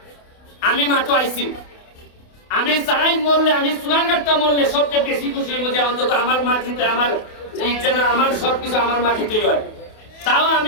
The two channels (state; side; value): late; right; 28 ms